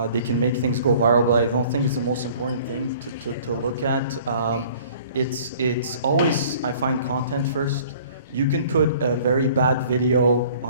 make things go viral, but I don't think it's the most important thing to look at. It's always, I find, content first. You can put a very bad video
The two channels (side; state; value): both; inverted; correlation -0.51